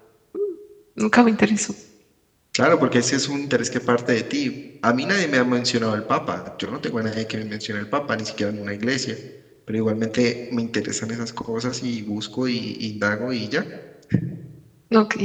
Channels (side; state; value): both; identical; correlation 1.00